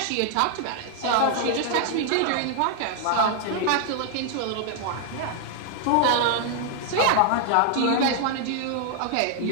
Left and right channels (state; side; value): different; both; correlation 0.00